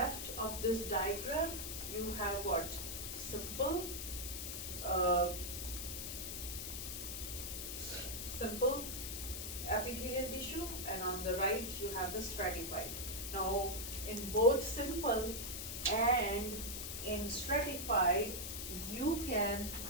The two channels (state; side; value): noise; left; hiss, 5 dB below the sound